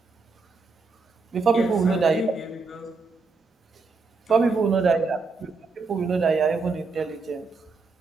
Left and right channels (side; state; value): left; quieter; 4.2 dB